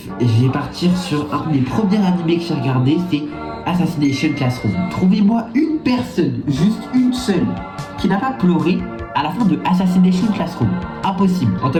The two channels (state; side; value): identical; both; correlation 1.00